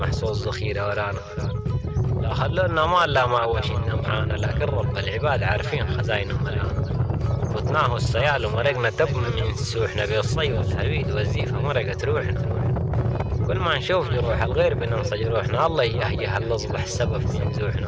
صوت ذخيرة ورانا. لا خلونا مال لا ما وشنا معانا، لكن رب العباد عارفين خزاينه ملانا. فتناه السيال ومرقنا تب من سوحنا، بالصي والهريد والزيفة مرقت روحنا. كل ما نشوف جروح الغير بننسى جروحنا، الله يهيه الأصبح السبب في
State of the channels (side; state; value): both; identical; correlation 1.00